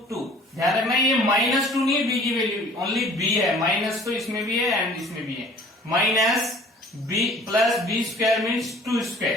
2। ध्यान रखना ये माइनस 2 नहीं है, b की वैल्यू ओनली b है, माइनस तो इसमें भी है एंड इसमें भी है। Minus b plus b square means 2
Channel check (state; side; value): normal; both; correlation 0.50